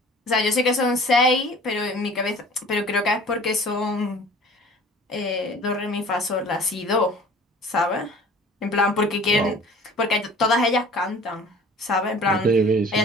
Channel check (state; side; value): normal; both; correlation 0.47